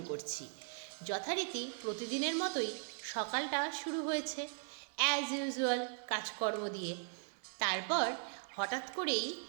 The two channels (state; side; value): silent; left; 52 dB below the other